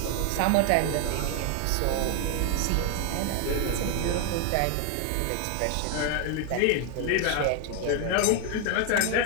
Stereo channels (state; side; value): different; both; correlation 0.01